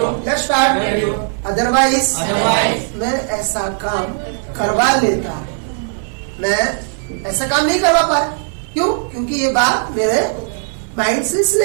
Otherwise, मैं ऐसा काम करवा लेता, मैं ऐसा काम नहीं करवा पाया। क्यों? क्योंकि ये बात मेरे माइंड से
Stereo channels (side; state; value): left; silent; digital silence